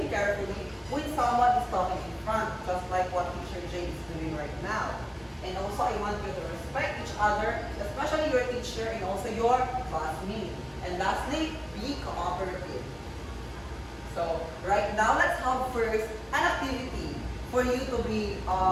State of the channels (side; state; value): both; identical; correlation 1.00